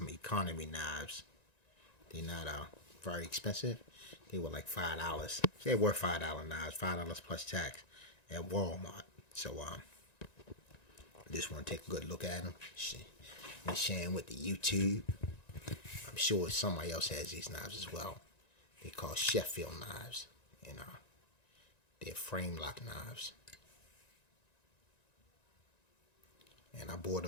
economy knives. They're not very expensive. They were like $5. They were $5 knives, $5 plus tax at Walmart. So I just want to take a good look at them and share them with the YouTube. I'm sure somebody else has these knives as well. They're called Sheffield knives, and they're frame lock knives. And I bought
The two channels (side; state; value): right; late; 1.9 ms